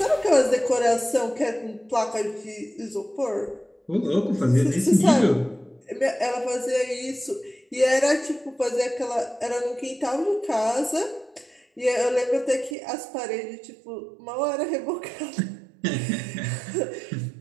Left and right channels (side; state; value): left; drops out; at 12.8 s